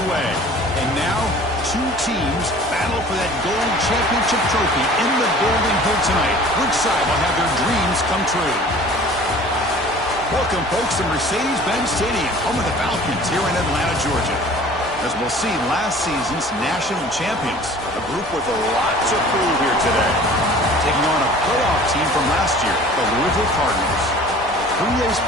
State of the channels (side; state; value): both; normal; correlation 0.47